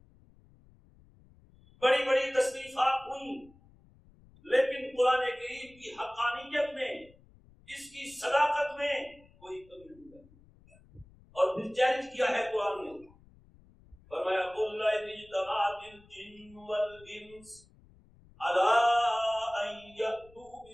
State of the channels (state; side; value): noise; left; rumble, 27 dB below the sound